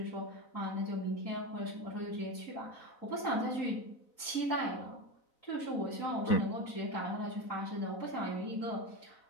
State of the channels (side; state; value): right; late; 3.8 ms